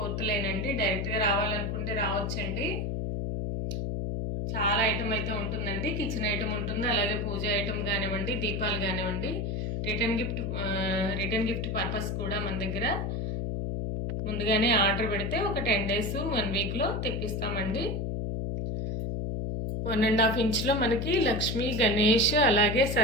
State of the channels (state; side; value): noise; left; hum, 1 dB below the sound